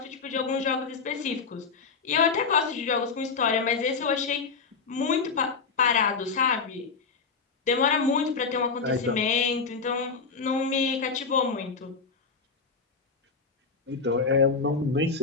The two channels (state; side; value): quieter; right; 5.0 dB